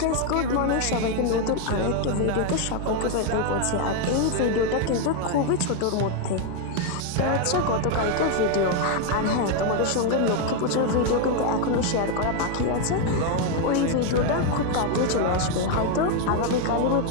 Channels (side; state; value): both; different; correlation 0.01